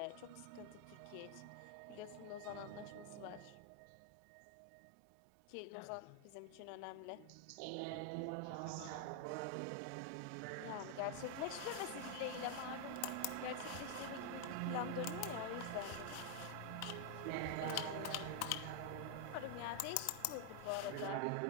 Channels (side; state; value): both; different; correlation 0.00